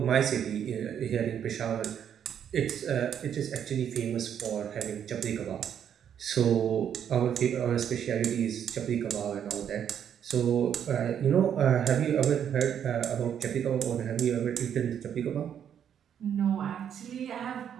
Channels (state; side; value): quieter; left; 8.9 dB